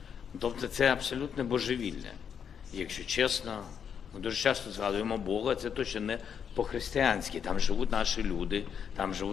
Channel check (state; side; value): quieter; right; 7.6 dB